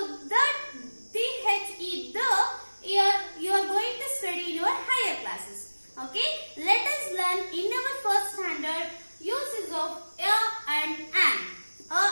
the, the, you are going to study in your higher classes. Okay, let us learn in our first standard uses of a and an.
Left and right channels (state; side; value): inverted; both; correlation -1.00